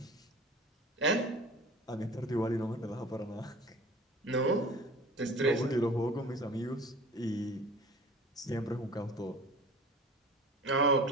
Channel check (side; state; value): both; normal; correlation 0.42